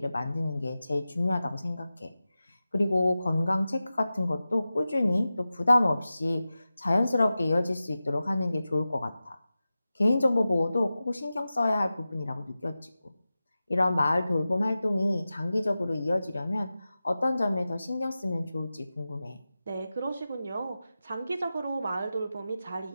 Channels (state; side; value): inverted; both; correlation -0.94